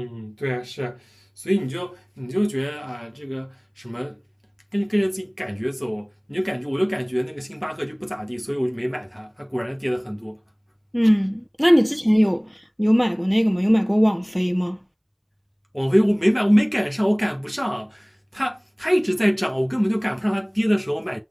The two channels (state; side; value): identical; both; correlation 1.00